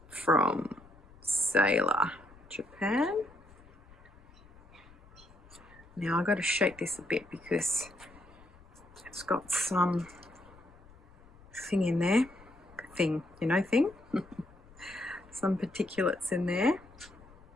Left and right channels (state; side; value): noise; left; rumble, 24 dB below the sound